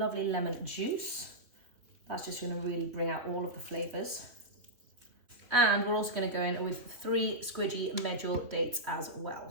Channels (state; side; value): late; left; 3.0 ms